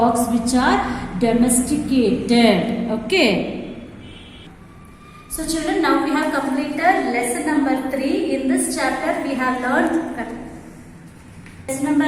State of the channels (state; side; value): identical; both; correlation 1.00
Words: which are domesticated. Okay. So children, now we have completed lesson number 3. In this chapter we have learned lesson